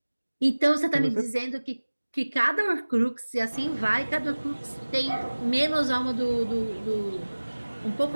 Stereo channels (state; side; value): inverted; both; correlation -1.00